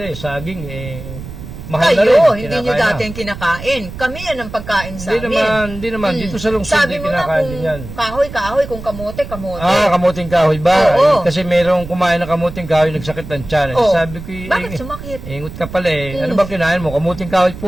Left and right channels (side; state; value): right; noise; rumble, 12 dB below the sound